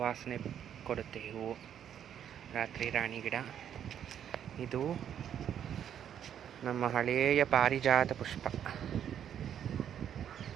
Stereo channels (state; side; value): quieter; left; 9.4 dB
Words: ಕೊಡುತ್ತೆ ಹೂವು. ರಾತ್ರಿ ರಾಣಿ ಗಿಡ. ಇದು ನಮ್ಮ ಹಳೆಯ ಪಾರಿಜಾತ ಪುಷ್ಪ.